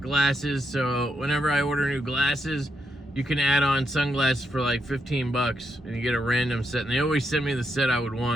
so whenever I order new glasses, you can add on sunglasses for like 15 bucks, and you get a random set, and they always send me the set I would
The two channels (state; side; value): normal; both; correlation 0.81